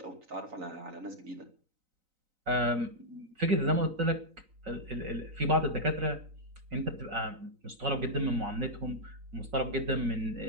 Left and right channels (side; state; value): left; late; 3.9 ms